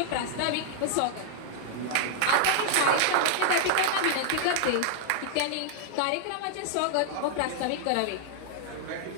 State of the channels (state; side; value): different; both; correlation -0.01